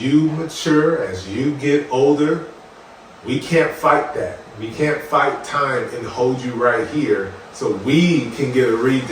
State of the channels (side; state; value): both; identical; correlation 1.00